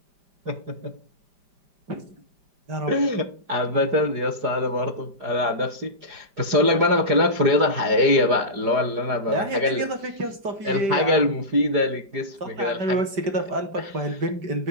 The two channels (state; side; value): late; left; 4.8 ms